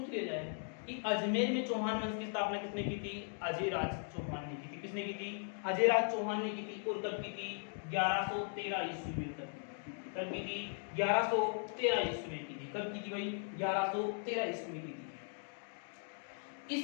लिया जाए कि अजमेर में चौहान वंश की स्थापना किसने की थी? अजयराज चौहान ने की थी। किसने की थी? अजयराज चौहान ने की थी। और कब की थी? 1113 ईस्वी में। कब की थी? 1113 ईस्वी में की थी। कब की थी भाई? 1113 ईस्वी में की थी।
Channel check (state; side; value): silent; right; 52 dB below the other